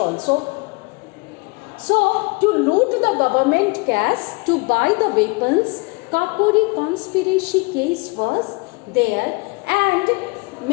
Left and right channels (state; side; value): quieter; right; 28.3 dB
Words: So, to loot the government cash, to buy the weapons, Kakori conspiracy case was there, and